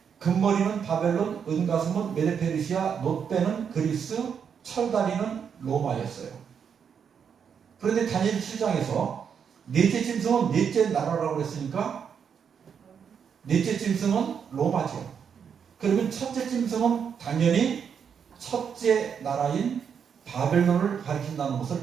금머리는 바벨론, 은가슴은 메데페르시아, 놋배는 그리스, 철다리는 로마였어요. 그런데 다니엘 7장에서 넷째 짐승은 넷째 나라라고 그랬으니까 넷째 짐승은 로마죠. 그러면 첫째 짐승은 당연히 첫째 나라인 바벨론을 가리킨다는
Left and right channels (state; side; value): quieter; left; 7.2 dB